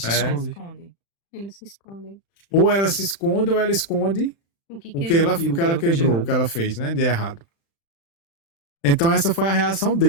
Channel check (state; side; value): late; right; 36 ms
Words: Ela esconde. esconde. Eles se escondem. Ou ela se esconde, ou ela esconde O que o que quebrou? ela, E o que ela quebrou, o que ela fez, né, de errado. Então essa foi a reação